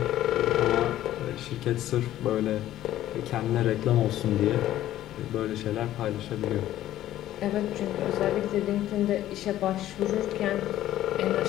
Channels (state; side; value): quieter; right; 13.4 dB